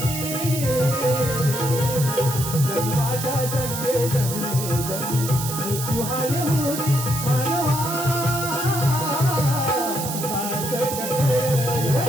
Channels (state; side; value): noise; right; hiss, 6 dB below the sound